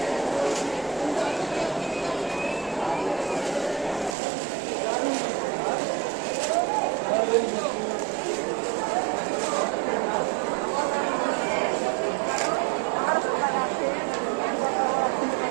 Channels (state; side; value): drops out; left; at 4.2 s